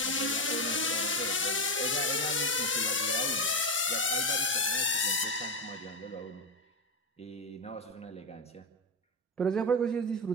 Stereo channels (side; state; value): both; normal; correlation 0.11